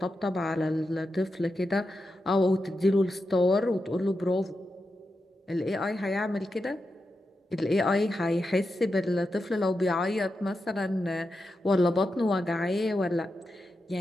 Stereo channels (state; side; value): normal; both; correlation 0.88